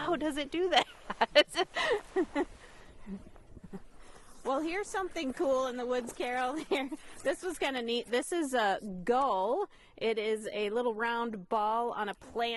does it do that? Well, here's something cool in the woods, Carol. Here, this was kind of neat. This is a gull. It is a little round ball on a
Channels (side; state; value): both; identical; correlation 1.00